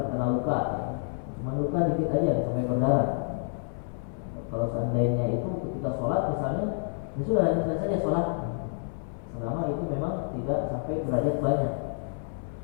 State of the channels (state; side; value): silent; right; 59 dB below the other